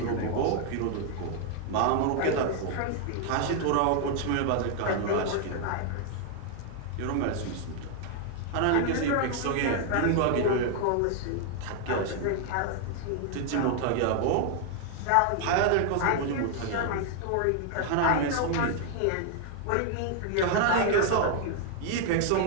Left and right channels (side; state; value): both; different; correlation 0.00